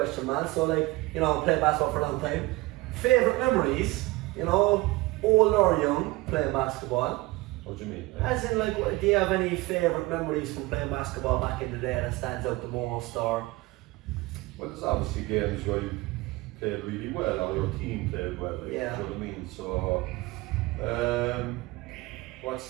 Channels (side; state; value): left; quieter; 21.0 dB